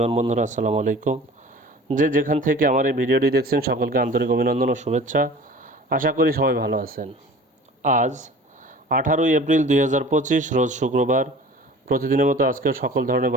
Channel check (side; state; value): both; normal; correlation 0.43